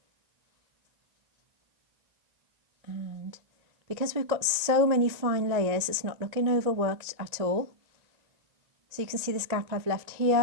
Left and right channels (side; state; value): left; late; 1.9 ms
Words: And because we've got so many fine layers, it's not looking overworked at all. So you can see this gap I've left